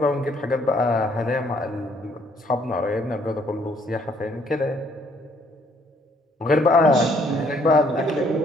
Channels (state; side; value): normal; both; correlation 0.65